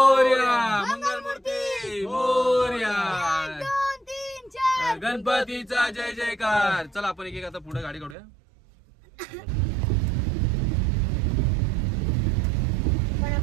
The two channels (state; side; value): drops out; left; at 8.2 s